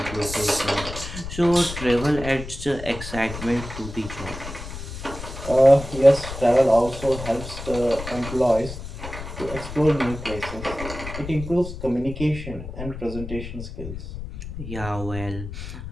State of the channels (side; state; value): left; noise; rumble, 10 dB below the sound